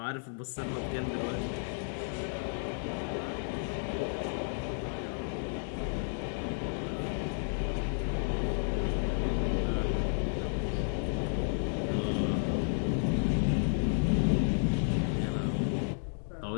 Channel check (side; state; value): right; silent; digital silence